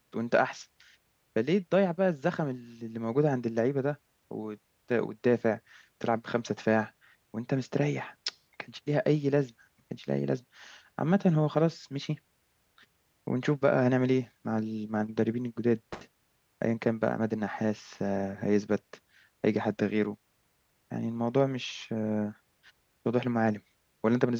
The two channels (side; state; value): both; identical; correlation 1.00